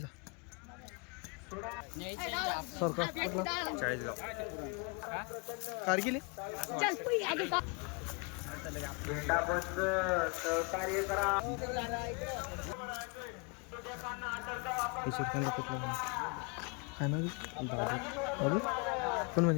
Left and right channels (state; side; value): quieter; right; 32.5 dB